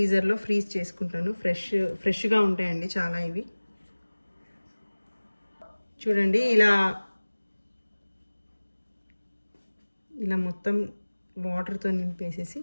ఫ్రీజ్ చేసుకుంటాను. ఫ్రెష్గా ఉంటాయండి చాలా ఇవి. చూడండి ఇలా మొత్తం వాటర్తో నింపేసేసి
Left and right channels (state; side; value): inverted; both; correlation -1.00